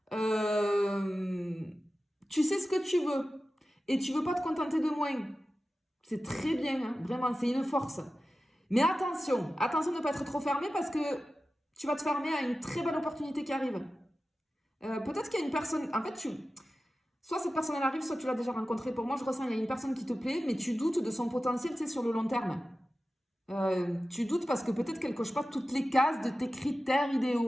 Tu sais ce que tu veux. Et tu veux pas te contenter de moins. C'est très bien, hein, vraiment, c'est une force. Mais attention de ne pas être trop fermé parce que tu vas te fermer à une très belle opportunité qui arrive. Peut-être qu'il y a une personne, en fait, soit cette personne elle arrive, soit tu l'as déjà rencontrée. Pour moi, je ressens qu'il y a une personne qui te plaît, mais tu doutes de son potentiel, tu sais, sur le long terme. Tu doutes parce que peut-être qu'elle coche pas toutes les cases de tes critères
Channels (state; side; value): normal; both; correlation 0.94